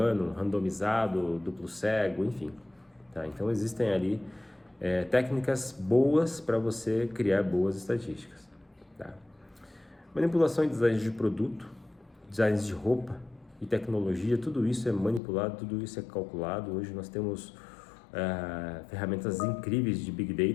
randomizado, duplo cego, enfim, tá? Então existem ali técnicas boas para você criar boas estatísticas, tá? Manipulação em design de produto, designs de roupa e tecnologia, tudo isso é manipulado, tudo isso é calculado. Hoje nós temos ferramentas incríveis de Big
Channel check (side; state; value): right; drops out; at 15.2 s